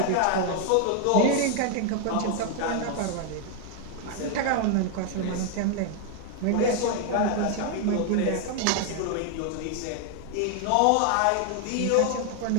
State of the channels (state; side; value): different; both; correlation 0.00